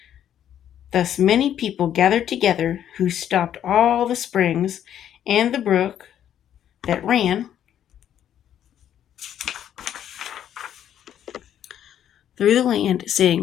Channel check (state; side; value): quieter; right; 10.3 dB